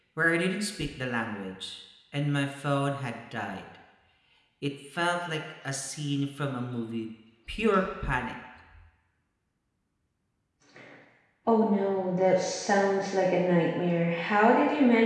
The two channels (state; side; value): identical; both; correlation 1.00